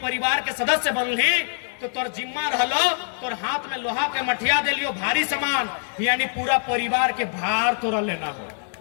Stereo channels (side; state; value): right; silent; digital silence